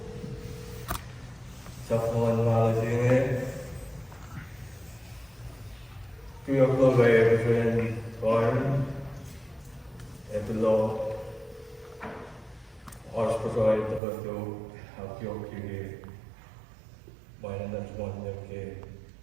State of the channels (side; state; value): left; drops out; at 14.0 s